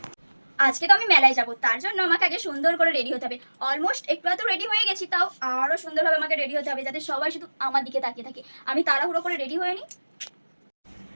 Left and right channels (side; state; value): both; inverted; correlation -1.00